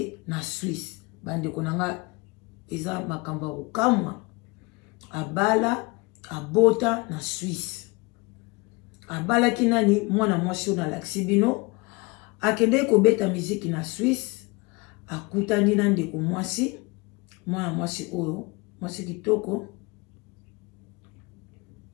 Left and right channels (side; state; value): right; quieter; 26.1 dB